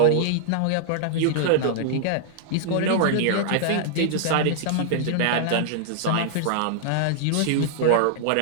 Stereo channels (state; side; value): different; both; correlation -0.01